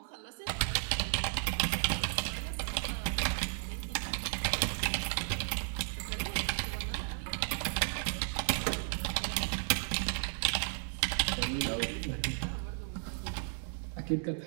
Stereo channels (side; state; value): left; silent; 55 dB below the other